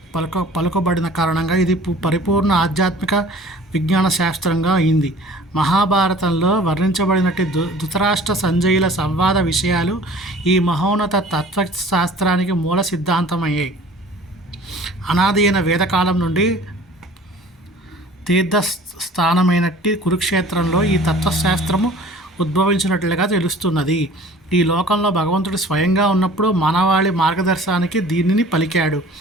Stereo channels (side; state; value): both; normal; correlation 0.47